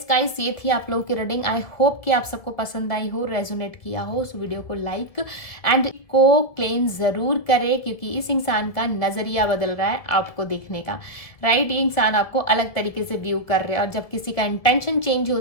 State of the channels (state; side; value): late; right; 1.9 ms